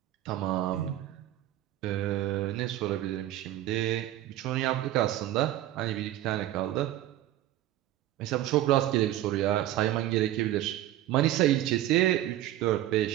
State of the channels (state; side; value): quieter; left; 14.0 dB